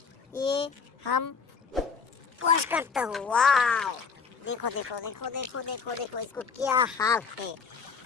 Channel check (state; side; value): quieter; right; 5.7 dB